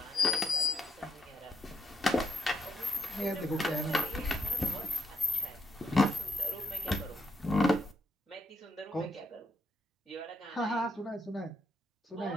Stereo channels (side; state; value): both; normal; correlation 0.79